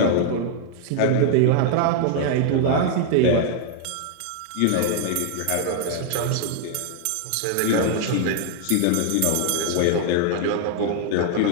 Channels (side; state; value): both; different; correlation 0.00